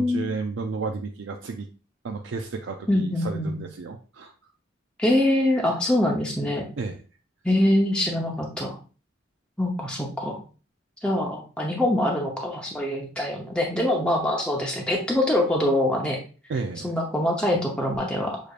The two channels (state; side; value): normal; both; correlation 0.70